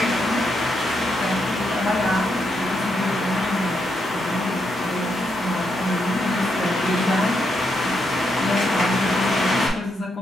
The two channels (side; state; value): both; normal; correlation 0.80